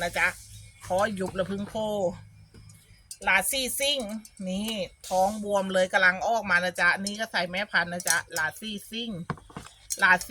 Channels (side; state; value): both; identical; correlation 1.00